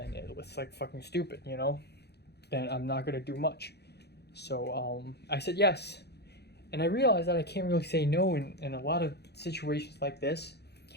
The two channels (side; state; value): right; late; 0.48 ms